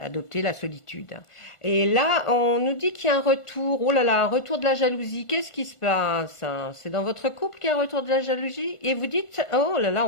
la solitude. Et là, on nous dit qu'il y a un retour. Oh là là, un retour de la jalousie. Qu'est-ce qui se passe? C'est dans votre couple qu'il y a un retour de la jalousie? Et vous dites, oh là là,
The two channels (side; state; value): right; late; 1.5 ms